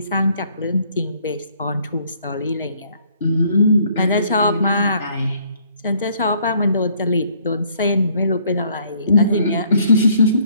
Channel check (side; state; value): both; inverted; correlation -0.63